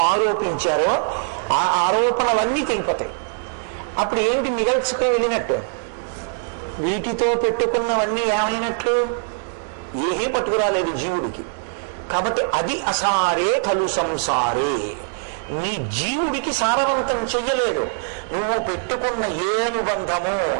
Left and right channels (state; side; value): silent; left; digital silence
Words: ఆరోపించారో ఆ ఆరోపణలన్నీ తెగిపోతాయి. అప్పుడు ఏమిటి మిగల్చుకుని వెళ్ళినట్టు? వీటితో పెట్టుకున్నవన్నీ ఏమైనట్లు? ఏమీ పట్టుకురాలేదు జీవుడికి. కాబట్టి అది అసారే కలు సంసారే. నీ జీవుడికి సారవంతం చెయ్యలేదు. నువ్వు పెట్టుకున్న ఏ అనుబంధము